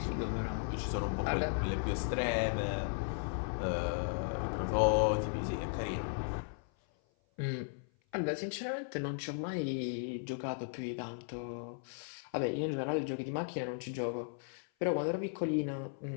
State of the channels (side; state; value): right; silent; 54 dB below the other